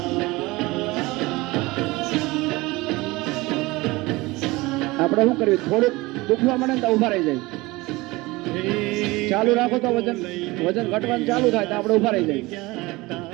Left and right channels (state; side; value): quieter; left; 21.6 dB